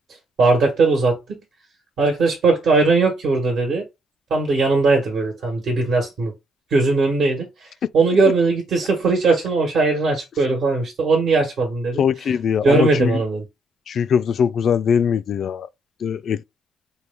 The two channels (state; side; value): normal; both; correlation 0.71